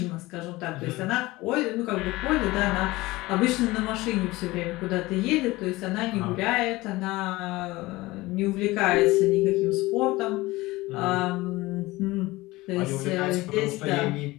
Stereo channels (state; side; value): quieter; right; 20.1 dB